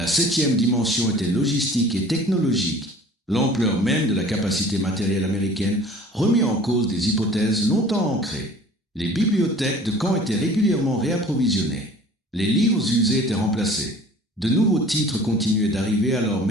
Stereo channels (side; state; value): both; normal; correlation 0.47